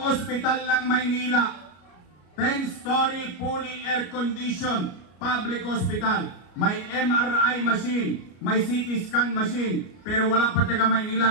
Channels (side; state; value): right; late; 33 ms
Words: ospital ng Maynila, 10-story fully air-conditioned public hospital. May MRI machine, may CT scan machine, pero wala pa taga Maynila